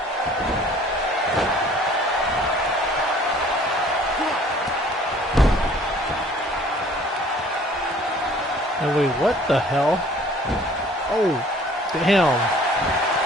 And wait, what the hell? Oh, damn.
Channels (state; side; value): normal; both; correlation 0.53